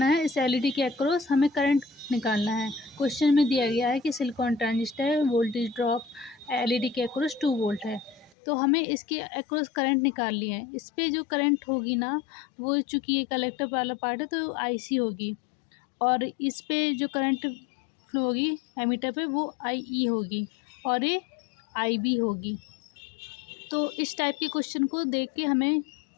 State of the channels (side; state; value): right; drops out; at 8.3 s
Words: है, इस एलईडी के अक्रॉस हमें करंट निकालना है। क्वेश्चन में दिया गया है कि सिलिकॉन ट्रांजिस्टर है, वोल्टेज ड्रॉप एलईडी के अक्रॉस 2 वोल्ट है। तो हमें इसके अक्रॉस करंट निकालनी है। इस पे जो करंट होगी ना, वो चूँकि ये कलेक्टर वाला पार्ट है तो आईसी होगी और इस पे जो करंट फ्लो होगी एमीटर पे वो आईई होगी और ये आईबी होगी। तो इस टाइप के क्वेश्चन को देख के हमें